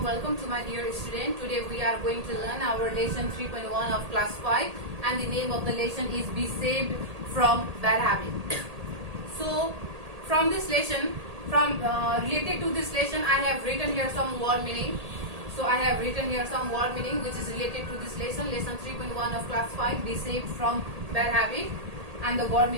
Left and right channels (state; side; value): late; left; 1.8 ms